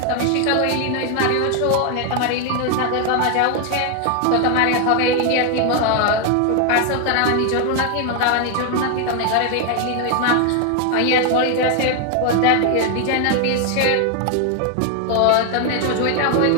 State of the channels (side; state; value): both; different; correlation 0.00